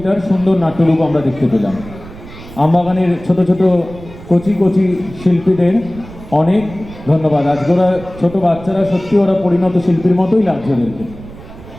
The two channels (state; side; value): noise; right; rumble, 17 dB below the sound